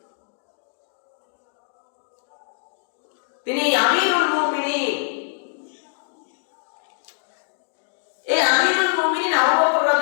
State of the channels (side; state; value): right; silent; 61 dB below the other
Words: তিনি আমিরুল মুমিনিন। এই আমিরুল মুমিনিন আবু বকর